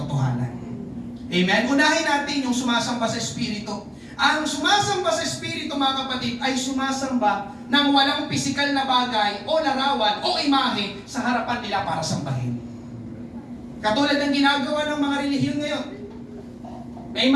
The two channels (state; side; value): identical; both; correlation 1.00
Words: Amen? Unahin natin yung sumasamba sa Espiritu. Ang sumasamba sa Espiritu, mga kapatid, ay sumasamba ng walang pisikal na bagay o larawan o imahe sa harapan nila para sambahin. Katulad ng ginagawa ng mga relihiyon ngayon. May